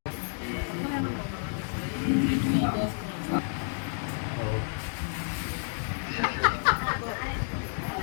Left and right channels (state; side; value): silent; right; digital silence